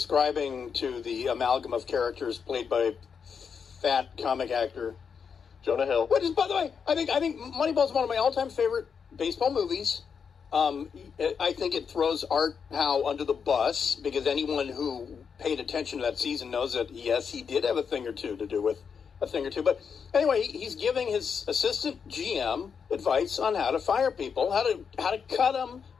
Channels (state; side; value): quieter; right; 6.4 dB